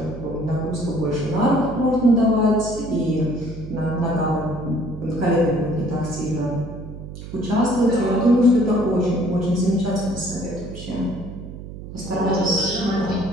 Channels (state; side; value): noise; right; hum, 12 dB below the sound